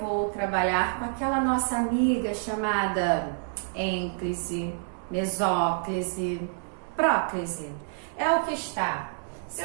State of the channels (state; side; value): silent; left; 59 dB below the other